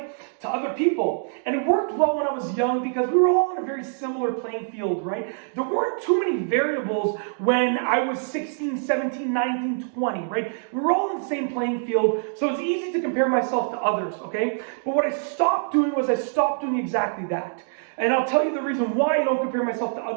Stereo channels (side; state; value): left; silent; digital silence